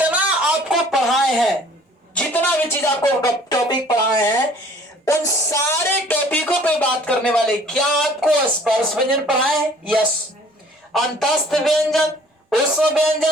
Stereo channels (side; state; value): both; normal; correlation 0.53